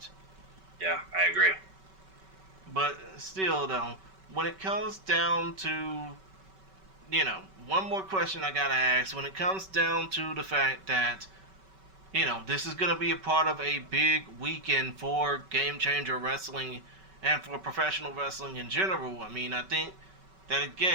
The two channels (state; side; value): late; left; 5.2 ms